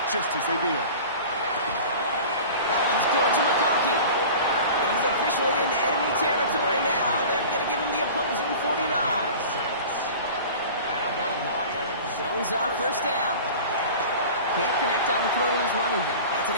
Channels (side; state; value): both; inverted; correlation -0.38